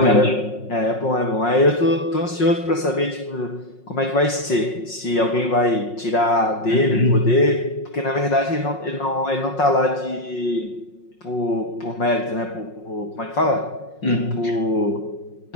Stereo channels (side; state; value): right; late; 5.5 ms